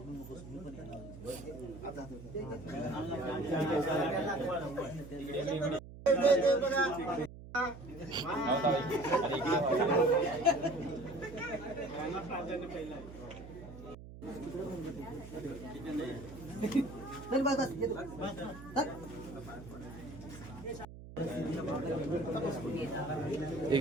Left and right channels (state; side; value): noise; right; hum, 14 dB below the sound